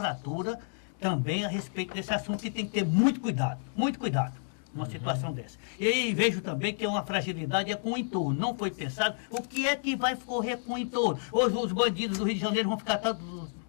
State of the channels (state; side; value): silent; right; digital silence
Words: também a respeito desse assunto e tem que ter muito cuidado numa situação dessa. E aí vejo também que é uma fragilidade com o entorno. Não foi pensado o que é que vai correr com o entorno. Hoje os bandidos do Rio de Janeiro vão ficar